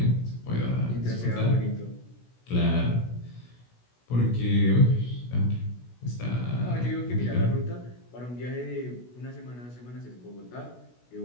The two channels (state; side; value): late; right; 16 ms